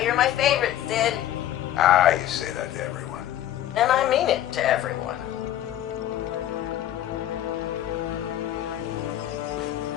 you're my favorite, Sid. Ah, you say that to everyone. And I mean it to everyone.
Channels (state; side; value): quieter; right; 12.4 dB